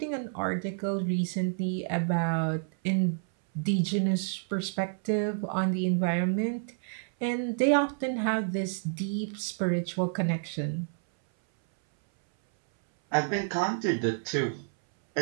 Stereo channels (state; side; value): silent; left; 58 dB below the other